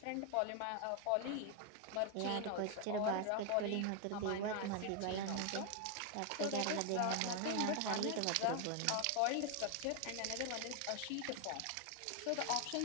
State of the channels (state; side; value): different; both; correlation 0.01